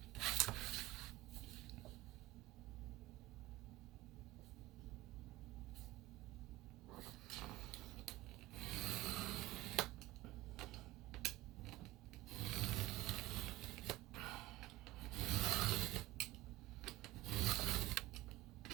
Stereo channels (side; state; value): left; quieter; 17.3 dB